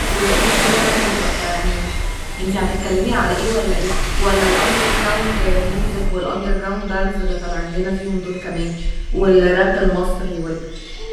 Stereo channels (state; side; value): identical; both; correlation 1.00